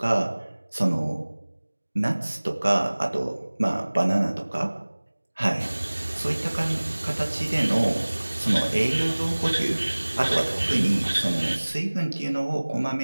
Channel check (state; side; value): inverted; both; correlation -1.00